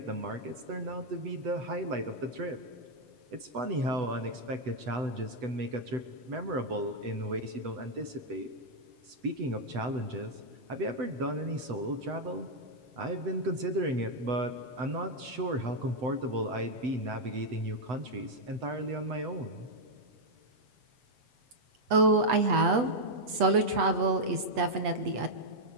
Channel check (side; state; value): left; late; 8.2 ms